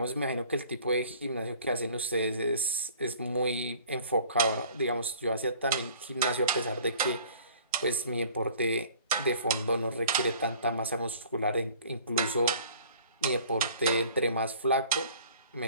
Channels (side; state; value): both; inverted; correlation -0.51